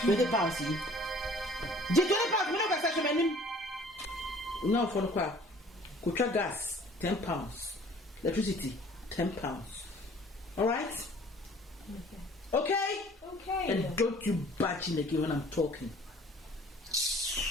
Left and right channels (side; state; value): both; normal; correlation 0.53